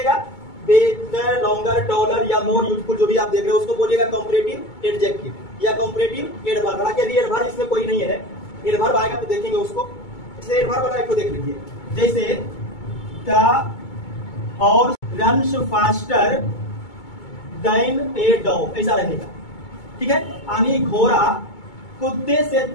बेटर, लॉन्गर, टॉलर या मोर यूजफुल जो भी आप देख रहे हो उसको बोलिएगा कंपैरेटिव एडजेक्टिव या कंपैरेटिव एडवर्ब। हालांकि यदि एडवर्ब इसमें कोई नहीं है, एडवर्ब आएगा तो देखेंगे उसको। जैसे एडवर्ब वाला को देख लीजिए, जैसे द और runs faster than a dog, ऐसा रहेगा। ठीक है, यानी घोड़ा कुत्ते से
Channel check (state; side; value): late; right; 2.2 ms